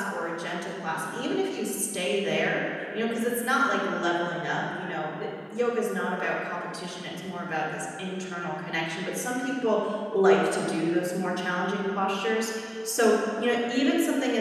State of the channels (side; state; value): both; identical; correlation 1.00